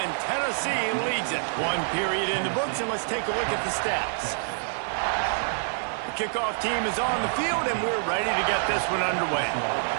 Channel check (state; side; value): silent; left; digital silence